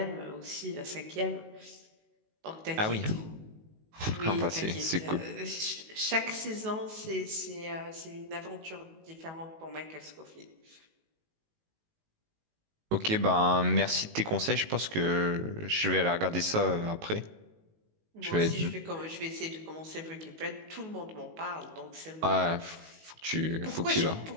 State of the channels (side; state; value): left; late; 19 ms